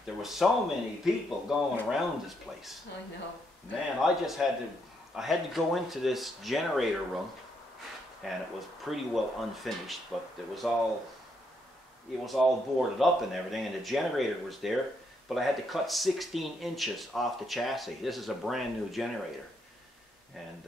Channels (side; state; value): both; normal; correlation 0.76